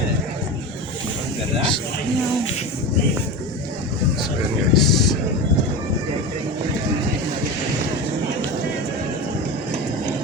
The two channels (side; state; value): both; normal; correlation 0.25